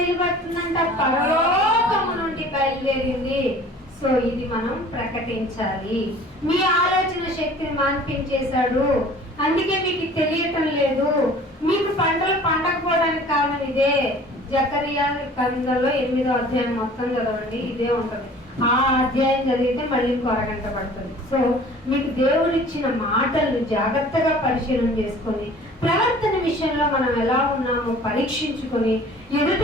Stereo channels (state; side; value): normal; both; correlation 0.48